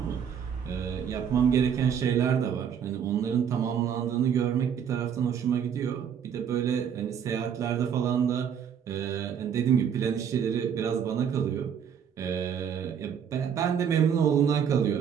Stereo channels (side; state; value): left; quieter; 8.0 dB